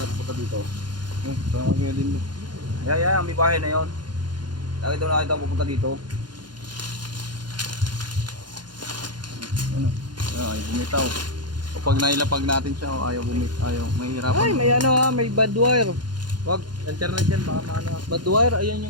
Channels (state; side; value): late; left; 0.71 ms